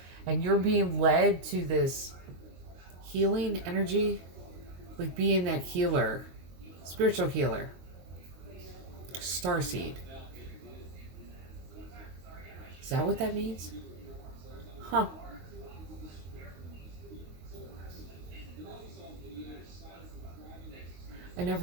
And you're being led to this healing energy. Like being that healer, spiritual healer, starseed. Is that what that means? Huh. I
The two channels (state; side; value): late; left; 22 ms